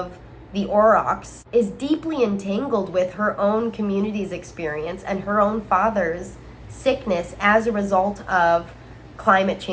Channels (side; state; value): both; identical; correlation 1.00